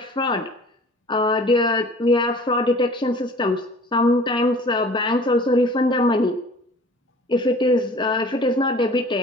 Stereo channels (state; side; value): normal; both; correlation 0.47